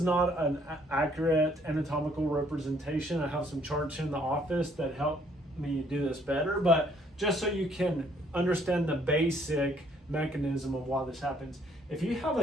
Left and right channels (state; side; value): normal; both; correlation 0.64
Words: not an accurate anatomical representation, I have some charts in the office that help me do this better, but just so you can understand the basic mechanism of why this happens. If you have